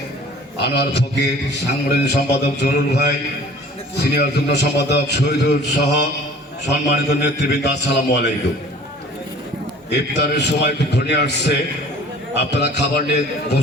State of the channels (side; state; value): both; normal; correlation 0.48